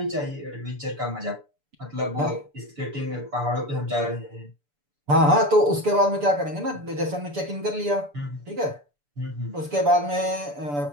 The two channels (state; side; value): late; left; 6.9 ms